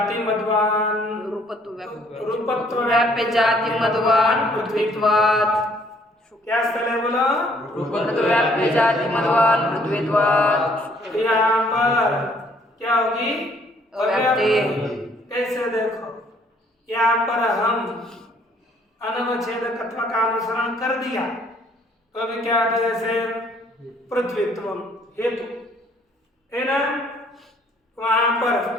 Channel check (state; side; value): normal; both; correlation 0.62